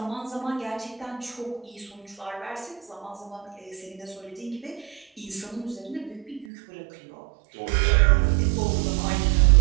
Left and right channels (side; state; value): left; drops out; at 6.5 s